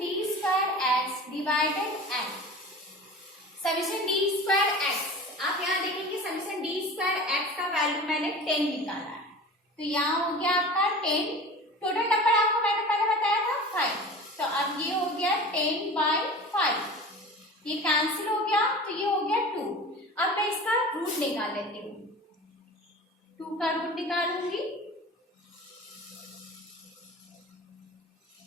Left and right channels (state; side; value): normal; both; correlation 0.37